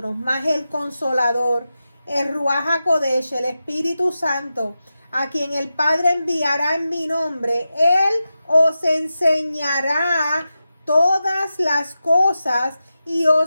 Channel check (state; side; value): inverted; both; correlation -0.91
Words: mas el Consolador, el Ruach HaKodesh, el Espíritu Santo, a quien el Padre enviará en mi nombre, Él os enseñará todas las cosas y